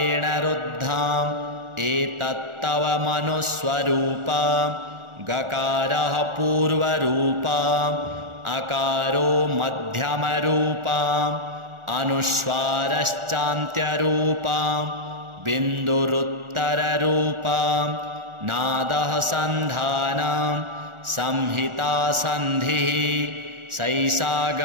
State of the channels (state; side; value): late; left; 1.4 ms